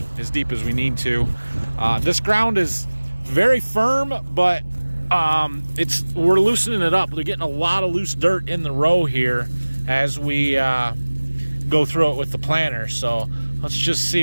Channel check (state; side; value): inverted; both; correlation -1.00